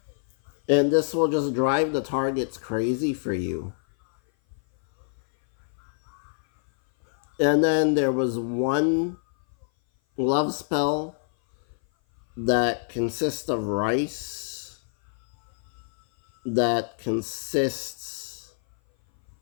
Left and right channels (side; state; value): right; silent; 57 dB below the other